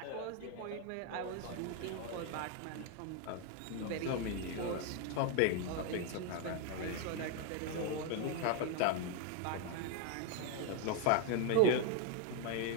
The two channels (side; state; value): both; different; correlation 0.00